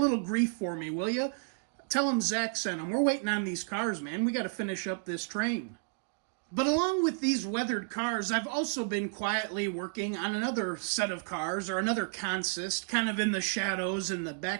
grief for me, will you? Tell him Zach sent him. We're waiting on these cars, man. We got to finish up this train. But along with these weathered cars, I've also been quietly working on another set of cars, or another consist, kind of in the shadows in the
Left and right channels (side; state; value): left; silent; 57 dB below the other